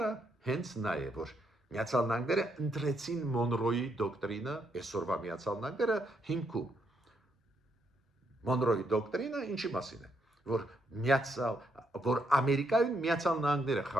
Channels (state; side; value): normal; both; correlation 0.76